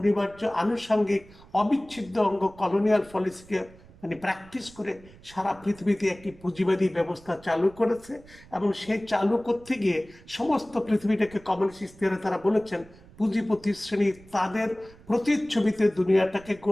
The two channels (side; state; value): right; noise; rumble, 23 dB below the sound